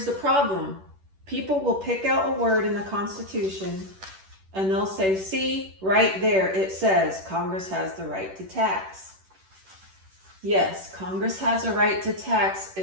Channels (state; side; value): late; left; 10 ms